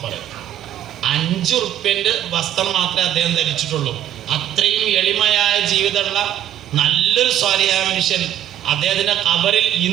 5 ഉറുപ്പ്യന്റെ വസ്ത്രം മാത്രമേ അദ്ദേഹം ധരിച്ചിട്ടുള്ളൂ. അത്രയും എളിമയായ ജീവിതമുള്ള നല്ലൊരു സ്വാലിഹായ മനുഷ്യൻ. അദ്ദേഹത്തിന്റെ ഖബറിൽ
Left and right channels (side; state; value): left; quieter; 11.2 dB